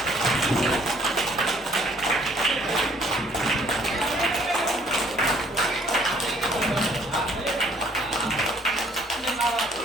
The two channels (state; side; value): normal; both; correlation 0.61